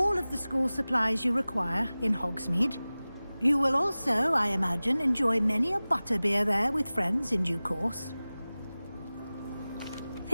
of the school supplies you require in Hogsmeade. You will also, I imagine, enjoy many a butterbeer there with friends in due course.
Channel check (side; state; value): both; inverted; correlation -0.98